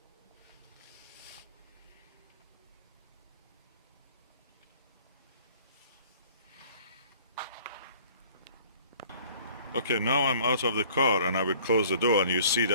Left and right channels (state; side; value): inverted; both; correlation -0.53